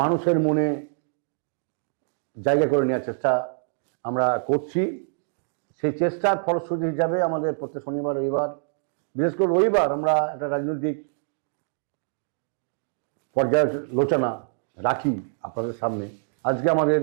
মনে জায়গা করে নেওয়ার চেষ্টা আমরা করছি। সেই চেষ্টার ফলশ্রুতি হিসাবে আমাদের প্রত্যেক শনিবার রবিবার, বিশেষ করে রবিবার, আমরা একটা রাজনৈতিক পর্যালোচনা রাখি আপনাদের সামনে। আজকে আমাদের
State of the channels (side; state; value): left; silent; digital silence